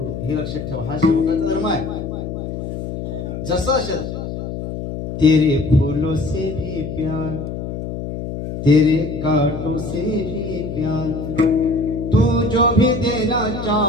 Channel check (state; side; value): noise; left; hum, 6 dB below the sound